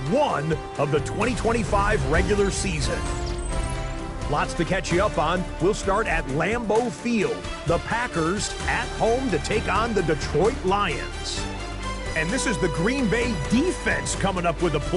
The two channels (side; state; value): both; identical; correlation 1.00